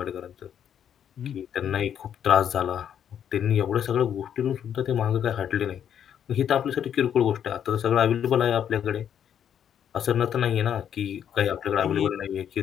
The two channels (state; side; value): quieter; right; 9.1 dB